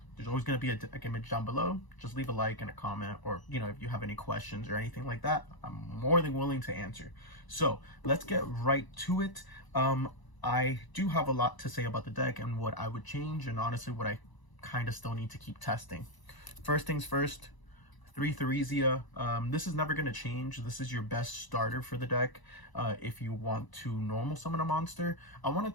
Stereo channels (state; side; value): late; right; 1.0 ms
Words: there's always going to be a deck image down below. Just leave a like and a comment, or if you have any questions or anything like that, I'm more than willing to answer. So let's get right to it. I do have a lot to say about the deck and what I would change, and honestly what I kind of still need to keep testing. First things first, 3 Theresia. This is never going to change. This is your best starter for the deck. If you want to normal summon a monster, I wanted